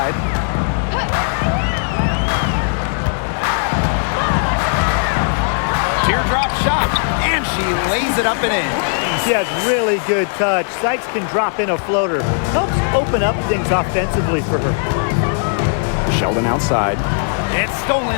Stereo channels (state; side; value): silent; right; digital silence